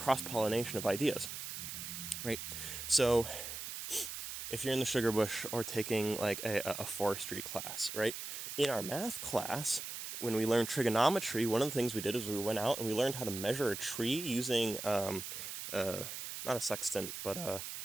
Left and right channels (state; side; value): noise; right; hiss, 7 dB below the sound